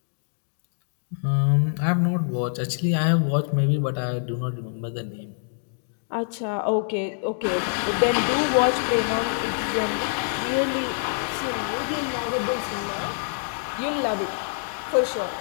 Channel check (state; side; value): silent; right; digital silence